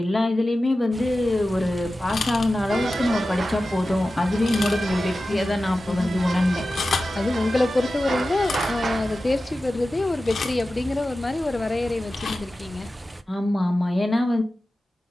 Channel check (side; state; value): both; normal; correlation 0.94